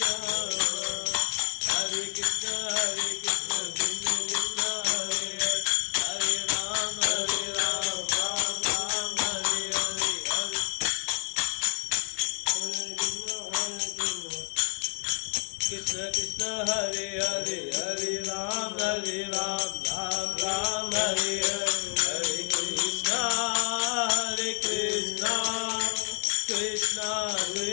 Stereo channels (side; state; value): right; quieter; 34.2 dB